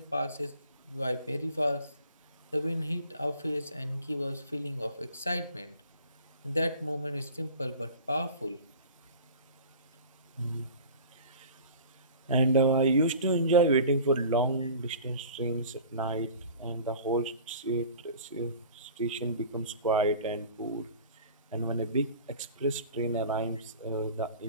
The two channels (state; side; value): inverted; both; correlation -0.42